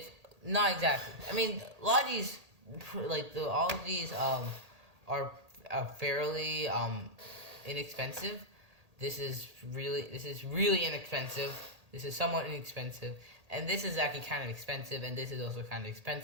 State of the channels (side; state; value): left; late; 1.8 ms